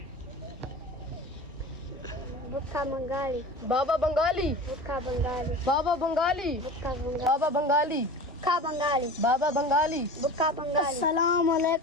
भुक्का बंगाली, बाबा बंगाली, भुक्का बंगाली, बाबा बंगाली, भुक्का बंगाली, बाबा बंगाली, भुक्का बंगाली, बाबा बंगाली। भुक्का बंगाली। अस्सलाम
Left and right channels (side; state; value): both; normal; correlation 0.35